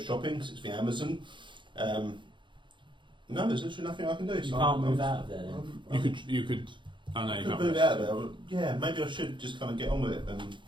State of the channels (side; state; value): left; late; 0.23 ms